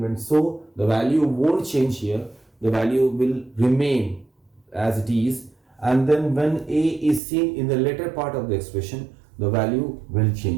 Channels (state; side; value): drops out; left; at 7.2 s